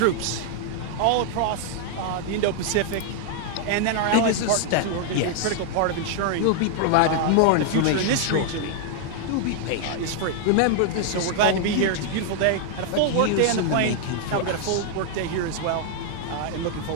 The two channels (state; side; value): different; both; correlation 0.00